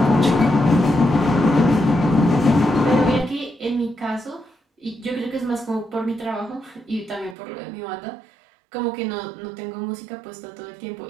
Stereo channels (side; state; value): left; drops out; at 7.4 s